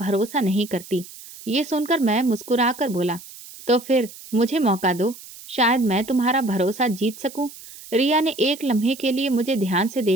नहीं करती। ये सुनकर मैं मुस्कुराकर बोला, तो फिर मुझे मौका दो, शायद मैं तुम्हारा भरोसा जीत सकूं। रिया ने एक लम्हे के लिए मुझे ध्यान से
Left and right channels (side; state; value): right; noise; hiss, 17 dB below the sound